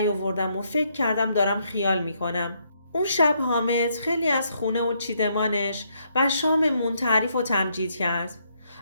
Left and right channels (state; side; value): inverted; both; correlation -0.74